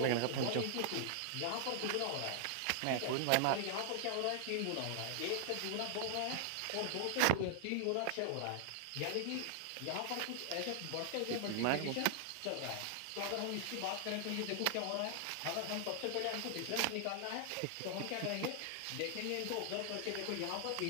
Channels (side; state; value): both; different; correlation 0.00